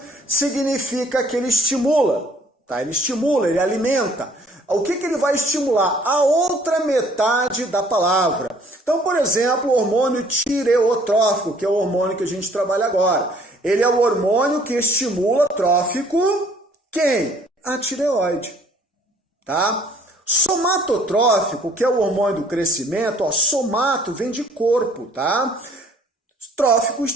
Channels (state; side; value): normal; both; correlation 0.58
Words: significa que ele estimula, tá? Ele estimula, ele alimenta. O que ele vai estimular? A outra metade da palavra. Então, por exemplo, o hormônio tireotrófico, que é o hormônio que a gente trabalha agora. Ele é o hormônio que estimula trófico quem? A tireoide. Tá? Somatotrófico, que é o hormônio do crescimento, ó, somato vem de corpo, tá? Trófico